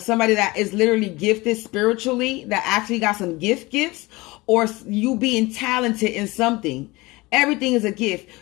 that is literally gifted spiritually, that actually got some gifts, or you being talented in something. Everything is a gift.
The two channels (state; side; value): quieter; right; 22.2 dB